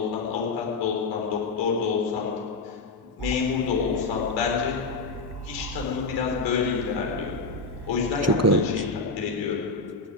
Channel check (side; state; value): right; quieter; 3.6 dB